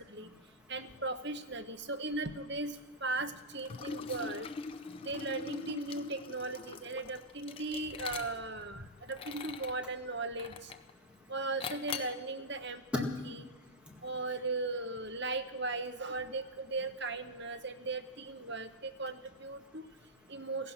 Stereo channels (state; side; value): normal; both; correlation -0.07